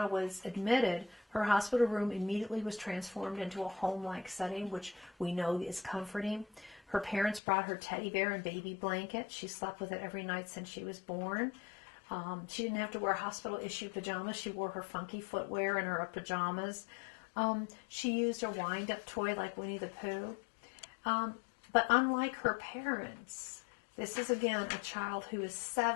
was admitted, her hospital room immediately was transformed into a home-like setting, which we know is comforting. Her parents brought her teddy bear and baby blanket. She slept with it every night since she was born. She didn't have to wear hospital-issued pajamas. She wore her funky footwear and her pajamas. She used a wind-up toy like Winnie the Pooh. But unlike her parents, this is again a child who is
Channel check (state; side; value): drops out; right; at 7.4 s